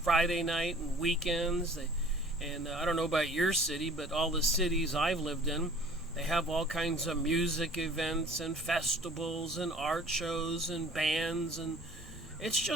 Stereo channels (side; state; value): both; normal; correlation 0.50